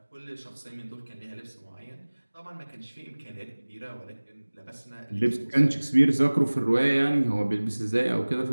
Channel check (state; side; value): inverted; both; correlation -1.00